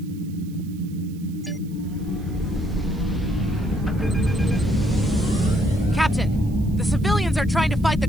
Captain, the civilians are trying to fight the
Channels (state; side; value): noise; right; hiss, 26 dB below the sound